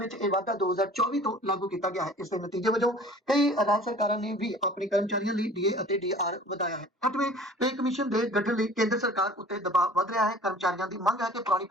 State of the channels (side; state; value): both; normal; correlation 0.47